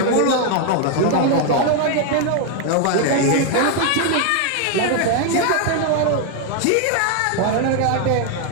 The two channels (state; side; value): different; both; correlation 0.00